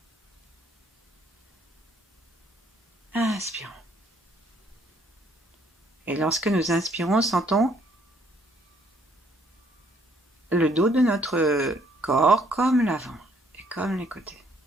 Inspirons. Et lorsque nous inspirons, sentons le dos de notre corps comme l'avant et comme les côtés.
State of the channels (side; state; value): both; normal; correlation 0.65